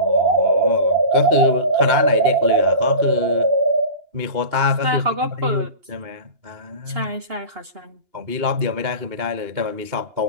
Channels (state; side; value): late; left; 2.8 ms